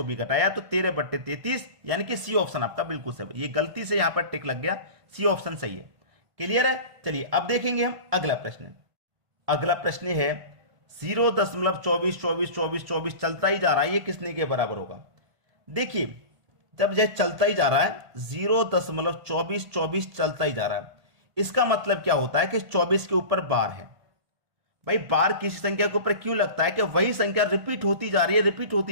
भी कटाया, तो 13/33, यानी कि सी ऑप्शन आपका बिल्कुल सही। ये गलती से यहां पर टिक लग गया, सी ऑप्शन सही है। क्लियर है? चलिए अब देखेंगे हम अगला प्रश्न। अगला प्रश्न है 0.24 चलता ही जा रहा है, ये किसने के बराबर होगा? देखिए, जब यह चलता ही जा रहा है, 0.24 चलता ही जा रहा है, इसका मतलब क्या होता है कि 24 के ऊपर बार है। भाई, बार किसी संख्या के ऊपर क्यों लगता है कि वही संख्या रिपीट होती जा रही है, रिपीट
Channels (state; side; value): late; left; 1.5 ms